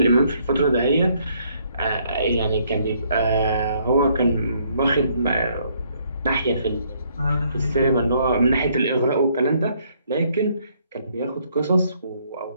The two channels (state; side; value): inverted; both; correlation -0.68